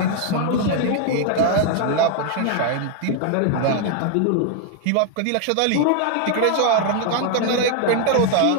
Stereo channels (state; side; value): different; both; correlation 0.00